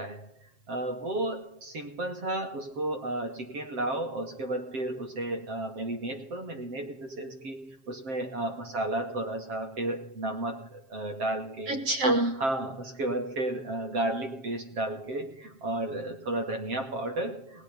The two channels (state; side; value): late; left; 7.5 ms